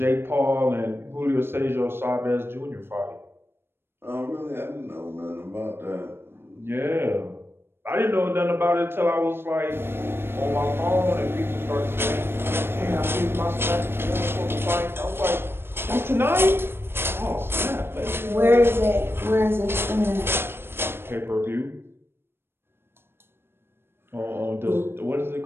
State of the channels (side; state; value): left; late; 0.11 ms